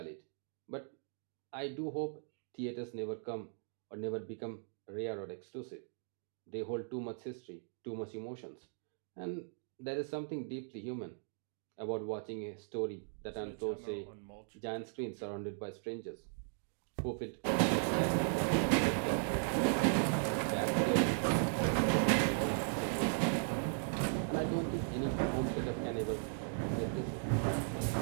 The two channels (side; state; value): left; silent; digital silence